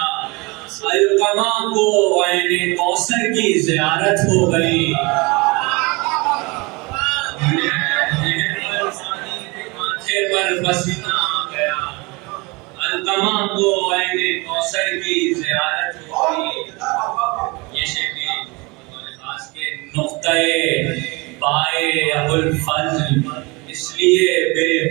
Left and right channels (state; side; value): quieter; left; 26.2 dB